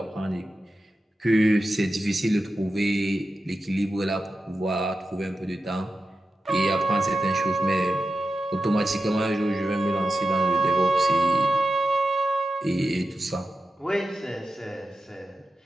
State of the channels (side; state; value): both; normal; correlation 0.92